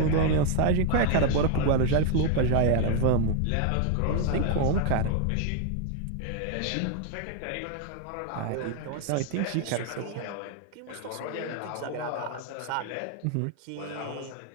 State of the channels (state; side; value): different; both; correlation 0.00